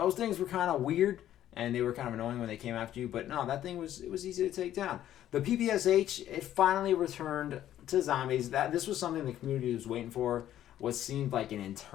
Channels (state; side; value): quieter; right; 12.0 dB